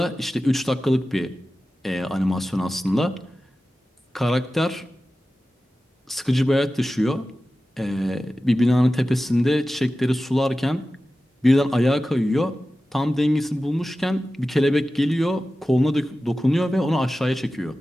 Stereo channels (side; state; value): both; normal; correlation 0.95